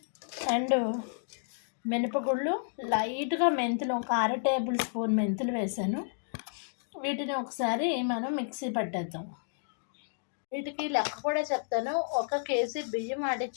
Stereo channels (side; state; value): right; silent; digital silence